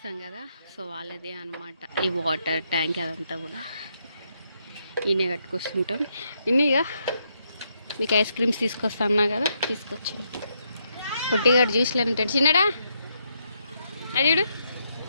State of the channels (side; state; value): both; inverted; correlation -0.78